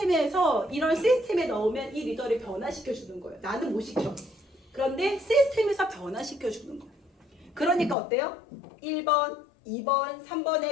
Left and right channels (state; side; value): drops out; right; at 8.0 s